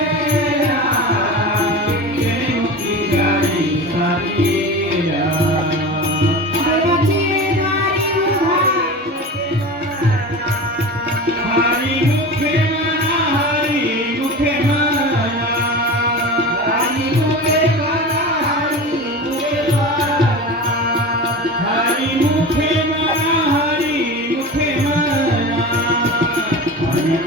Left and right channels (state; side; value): normal; both; correlation 0.31